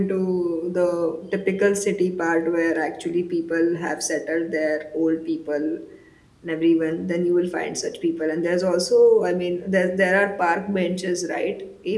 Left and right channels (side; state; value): both; identical; correlation 1.00